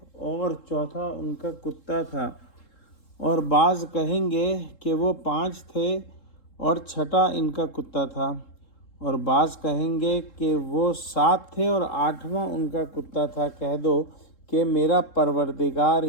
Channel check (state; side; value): late; right; 3.7 ms